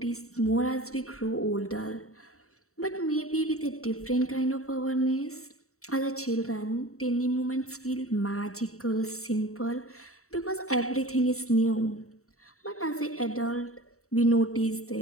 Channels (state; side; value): late; right; 0.64 ms